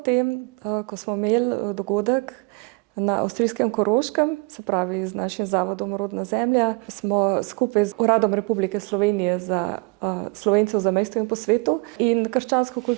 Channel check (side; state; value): left; quieter; 29.3 dB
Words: ko smo imeli dogodek na avstrijskem Koroškem, se pravi z našim zavodom Rodna zemlja, smo skupaj z Uradom Republike Slovenije za Slovence v zamejstvu in po svetu in Krščansko